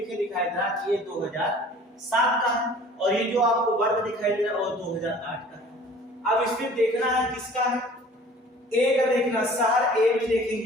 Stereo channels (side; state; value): both; normal; correlation 0.48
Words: दिखाई दे रहा है, ये 2007 का है, और ये जो आपको वर्ग दिखाई दे रहा है वो 2008 का है। अब इसमें देखना है किसका है, ए का देखना, शहर ए में